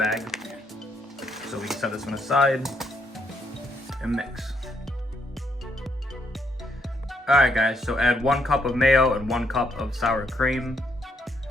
So we can set this one aside and mix. Alright, guys, so add 1 cup of mayo and 1 cup of sour cream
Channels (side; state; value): both; normal; correlation 0.74